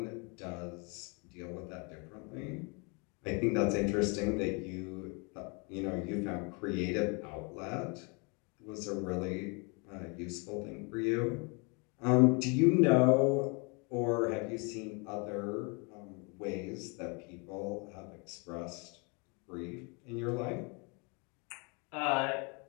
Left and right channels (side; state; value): right; quieter; 32.5 dB